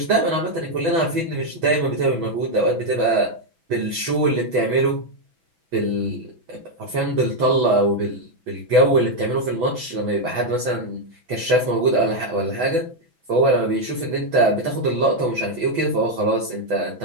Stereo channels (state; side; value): late; left; 6.1 ms